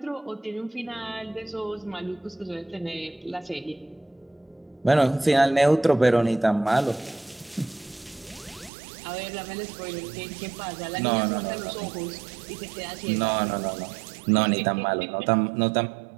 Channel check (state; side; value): drops out; left; at 8.7 s